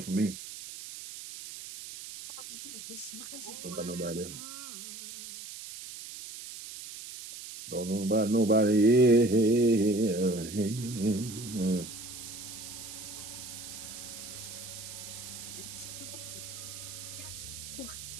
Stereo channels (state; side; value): noise; right; hiss, 11 dB below the sound